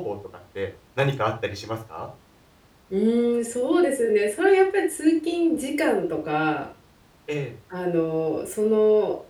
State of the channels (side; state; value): both; identical; correlation 1.00